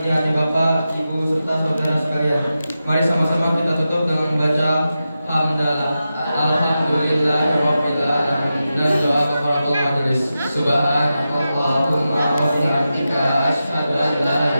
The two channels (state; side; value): inverted; both; correlation -0.91